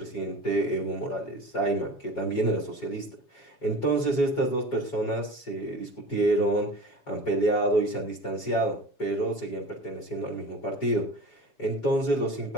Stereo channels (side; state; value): right; late; 7.2 ms